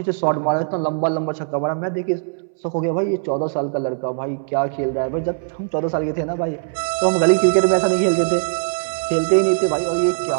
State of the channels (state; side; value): silent; left; 65 dB below the other